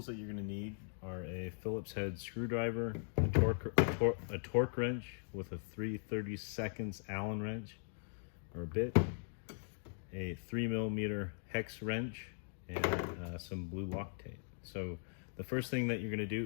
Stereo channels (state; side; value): silent; right; digital silence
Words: that you're going to need are a Phillips head screwdriver, a torque wrench with a 3/32 Allen wrench or bit, a 3mm hex wrench, and some blue Loctite. So the first thing that you're going to